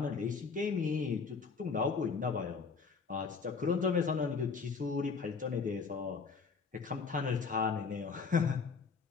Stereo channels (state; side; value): quieter; right; 5.1 dB